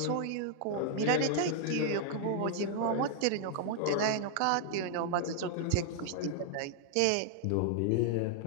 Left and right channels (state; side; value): different; both; correlation -0.01